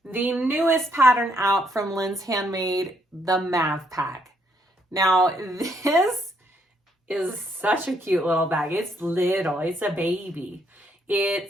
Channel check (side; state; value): both; normal; correlation 0.72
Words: the newest pattern out from Linds Handmade, the Mav Pack. Now this is such a cute little bag. It's little, it's a baby. I